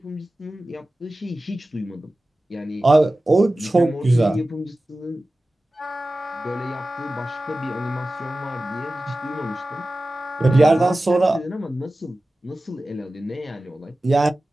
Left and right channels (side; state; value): both; normal; correlation 0.95